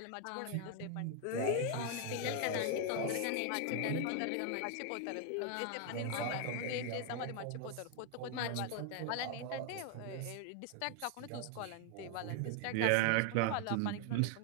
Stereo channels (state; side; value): different; both; correlation 0.00